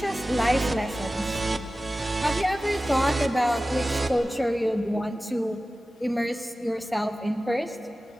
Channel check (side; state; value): both; normal; correlation 0.96